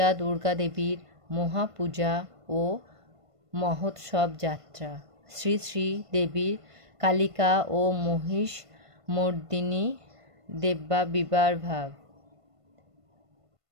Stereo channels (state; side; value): late; left; 1.5 ms